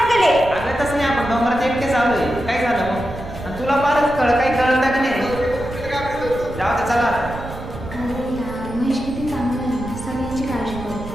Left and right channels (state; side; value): noise; right; rumble, 12 dB below the sound